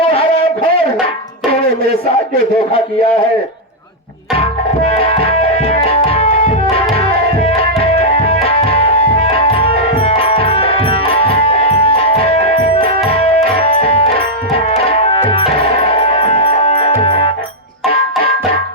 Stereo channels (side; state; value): both; normal; correlation -0.05